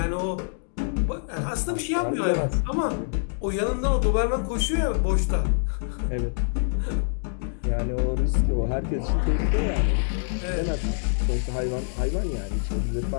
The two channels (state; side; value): silent; right; digital silence